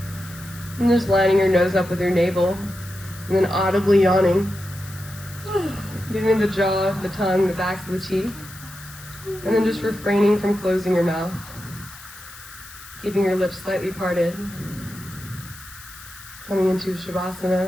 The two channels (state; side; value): noise; left; hiss, 17 dB below the sound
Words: And just lining your nose up with your navel. And then audibly yawning. Getting the jaw, the tongue, the backs of the teeth. And then just refraining from closing your mouth. Keeping your lips slightly parted. Coming into